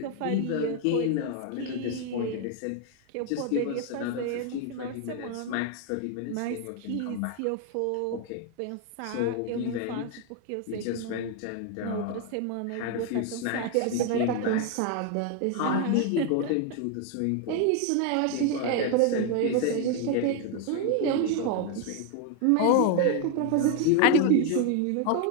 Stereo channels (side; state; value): both; different; correlation 0.01